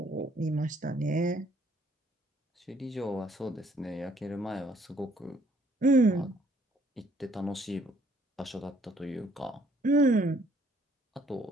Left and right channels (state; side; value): normal; both; correlation 0.64